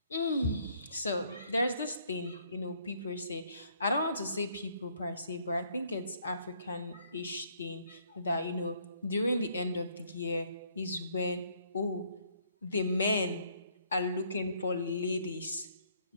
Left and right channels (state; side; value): inverted; both; correlation -0.66